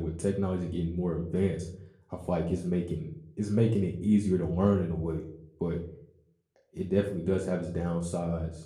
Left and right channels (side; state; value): both; identical; correlation 1.00